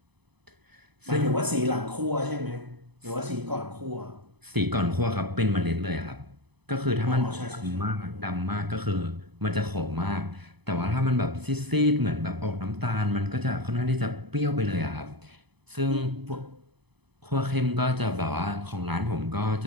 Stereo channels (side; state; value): left; late; 0.99 ms